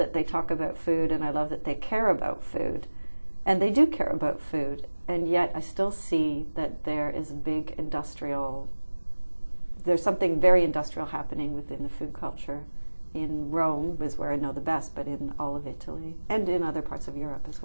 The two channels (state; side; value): inverted; both; correlation -1.00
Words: they talk about food, and I love that they care about food. And they do care about food. And yet I still see that there is a big there's something very industrial happening within the food culture. In Rome is where I know the best, but in all of Italy and in other parts of Europe as